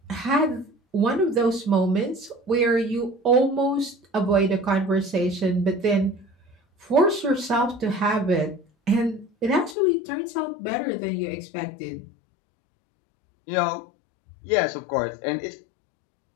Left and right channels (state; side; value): drops out; right; at 9.8 s